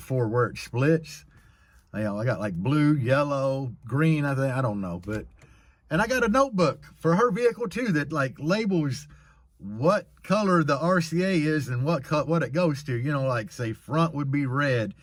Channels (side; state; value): both; identical; correlation 1.00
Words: where it splits. I got like blue, yellow, green, I don't know. And I got a notebook for her vehicle too that like labels what color the RCA is and what it goes to. Like say front would be red,